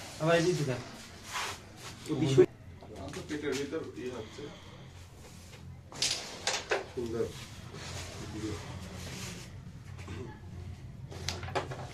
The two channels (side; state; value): both; identical; correlation 1.00